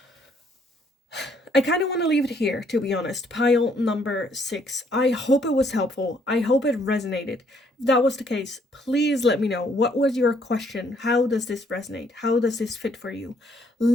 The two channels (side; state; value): both; normal; correlation 0.67